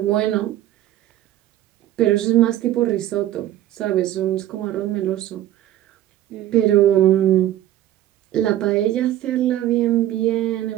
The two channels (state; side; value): quieter; left; 13.0 dB